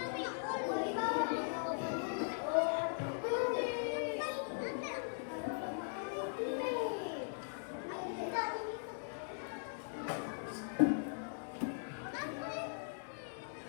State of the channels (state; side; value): silent; right; digital silence